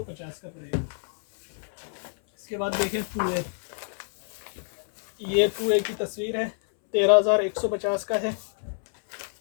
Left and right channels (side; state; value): right; silent; 60 dB below the other